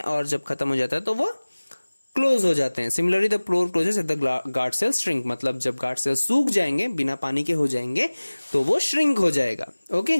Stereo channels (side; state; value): both; inverted; correlation -1.00